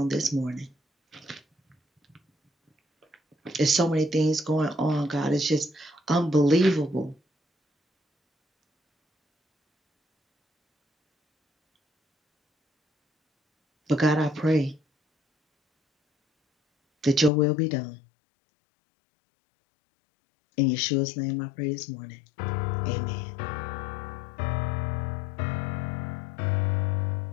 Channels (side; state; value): right; drops out; at 17.3 s